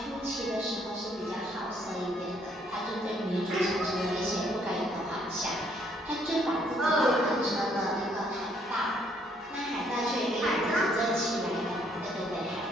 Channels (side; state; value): both; normal; correlation 0.67